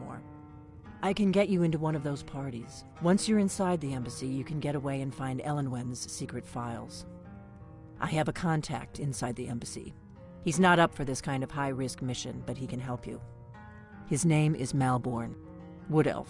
I can get you into one of those parties. Once you're inside the embassy, you can get away and find Elenwen's secret files. I have a contact inside the embassy. He's not up for this kind of high-risk mission, but he can help you. His name is Malborn. Wood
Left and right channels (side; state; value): both; identical; correlation 1.00